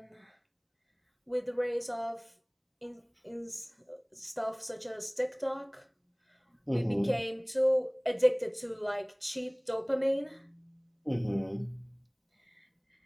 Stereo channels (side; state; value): both; identical; correlation 1.00